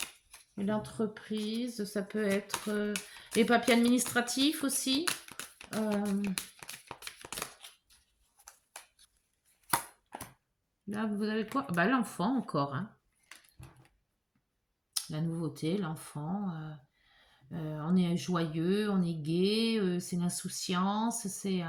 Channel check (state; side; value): identical; both; correlation 1.00